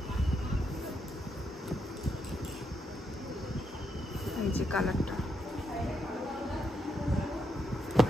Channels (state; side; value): normal; both; correlation 0.80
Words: এই যে কালারটা,